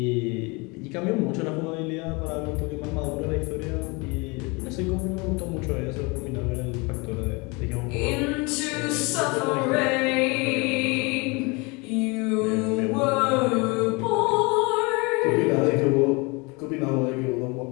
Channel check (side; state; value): right; quieter; 28.0 dB